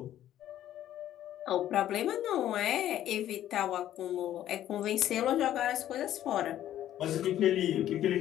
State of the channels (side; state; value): right; quieter; 12.1 dB